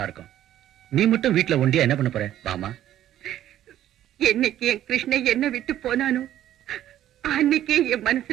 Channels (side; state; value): left; quieter; 12.2 dB